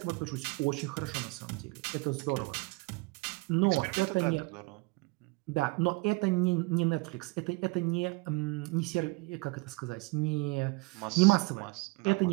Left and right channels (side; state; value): left; quieter; 25.8 dB